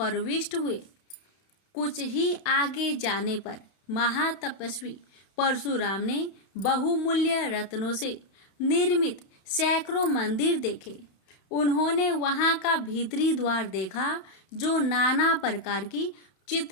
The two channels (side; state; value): right; late; 32 ms